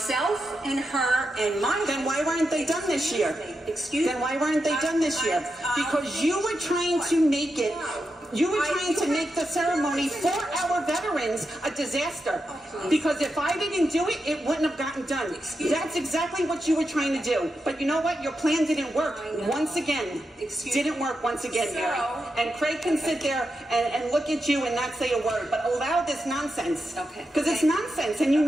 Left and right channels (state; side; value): normal; both; correlation 0.87